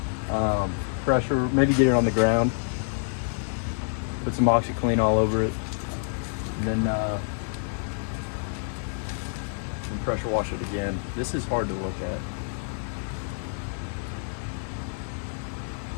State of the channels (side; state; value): right; silent; digital silence